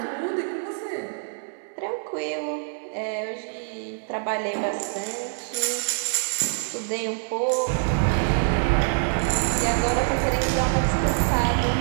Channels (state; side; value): silent; left; digital silence